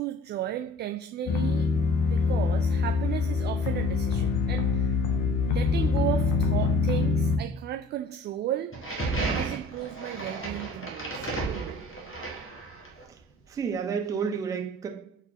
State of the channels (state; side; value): normal; both; correlation 0.49